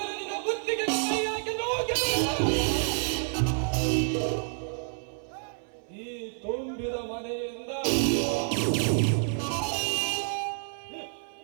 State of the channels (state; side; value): silent; left; 57 dB below the other